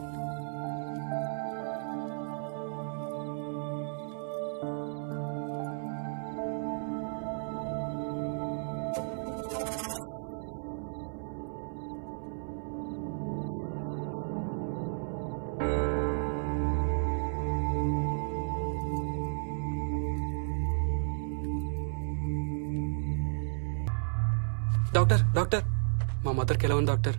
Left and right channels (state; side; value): silent; left; 56 dB below the other